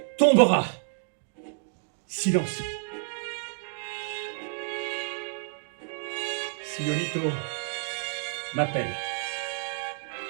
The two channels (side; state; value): left; silent; digital silence